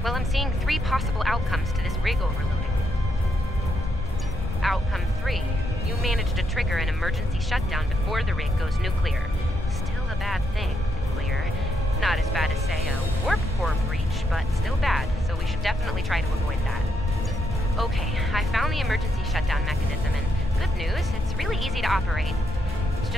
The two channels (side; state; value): both; normal; correlation 0.77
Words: Well, I'm seeing 3 possible outcomes to this rig overloading. Outcome 3. You managed to trigger an emergency shutdown before the rig goes nuclear. Still a bad thing, nuclear. Not as bad as, say, a warp core breach, but still bad, so we should definitely try to avoid that. Okay, I found the emergency shutdown mechanism, and good news, it's really easy to operate. It's